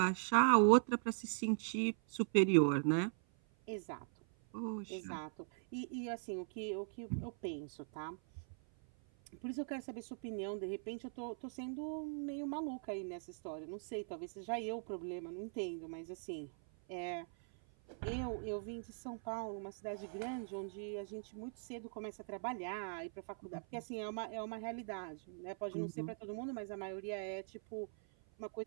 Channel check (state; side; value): silent; left; 51 dB below the other